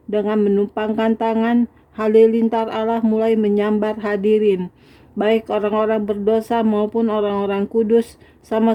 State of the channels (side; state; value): both; identical; correlation 1.00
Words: dengan menumpangkan tangan, halilintar Allah mulai menyambar hadirin. Baik orang-orang berdosa maupun orang-orang kudus